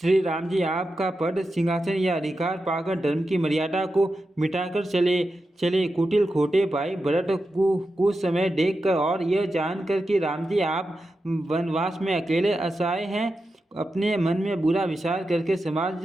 राम जी आपका पद सिंहासन या अधिकार पाकर धर्म की मर्यादा को मिटाकर चले। कुटिल खोटे भाई भरत कुछ समय देखकर और यह जानकर कि राम जी आप वनवास में अकेले असहाय हैं, अपने मन में बुरा विचार करके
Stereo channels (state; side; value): normal; both; correlation 0.90